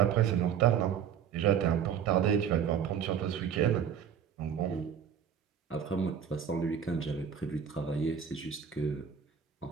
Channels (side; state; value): left; quieter; 8.1 dB